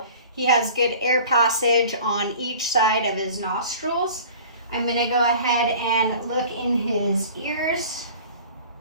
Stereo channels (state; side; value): inverted; both; correlation -0.44